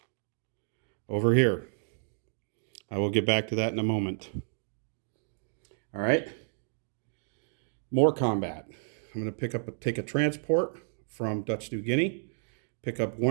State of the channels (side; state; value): left; silent; 57 dB below the other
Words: over here. I will get back to that in a moment. All right. More combat. I'm going to take a transport from Dutch New Guinea, pick up